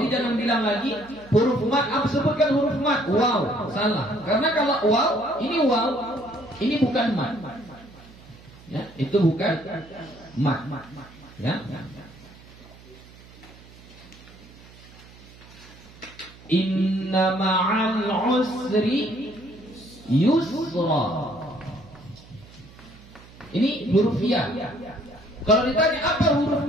jangan bilang lagi huruf mad. Apa sebutkan huruf mad? Waw, salah. Karena kalau waw, ini bukan mad. Ya, itu bukan mad. Ya. Inna ma'al usri yusra. Ini huruf ya. Kalau ditanya apa huruf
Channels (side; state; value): right; noise; hum, 22 dB below the sound